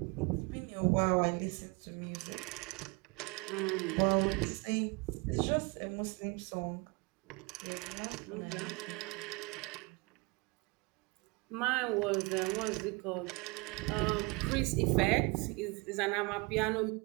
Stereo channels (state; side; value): quieter; left; 28.5 dB